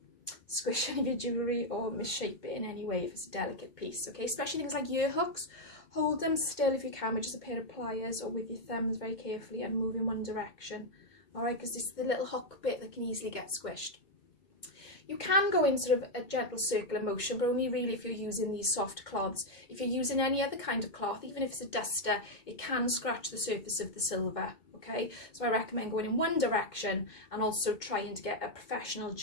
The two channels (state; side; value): late; right; 2.1 ms